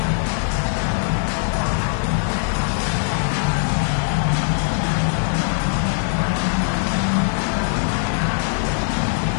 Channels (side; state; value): right; silent; digital silence